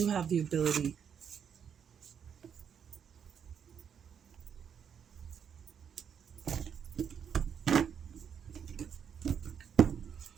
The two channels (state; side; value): quieter; left; 7.7 dB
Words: have the ability.